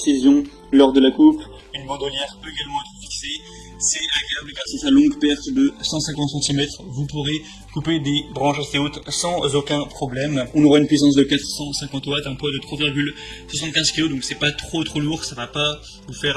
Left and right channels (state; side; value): identical; both; correlation 1.00